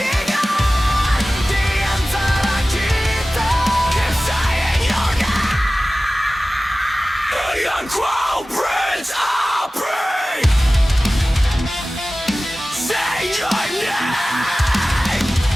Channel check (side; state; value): both; normal; correlation 0.97